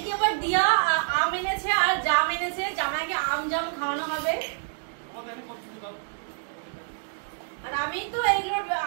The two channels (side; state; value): left; silent; digital silence